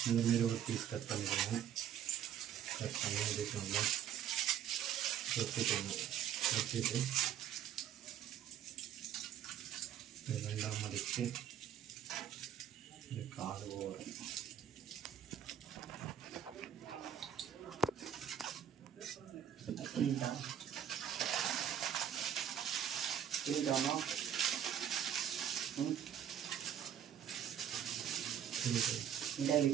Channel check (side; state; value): left; quieter; 9.5 dB